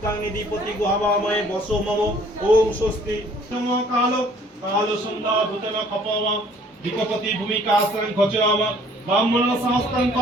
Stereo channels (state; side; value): normal; both; correlation 0.57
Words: নিধিপতি গো হবাময় বসো মম ওম স্বস্তি নম কাল কাল সন্ধ্যা ভূতন খপম বিকপতি ভূমিকা আশ্রয়ং খচরাম ব্রাহ্মণ সমস্তং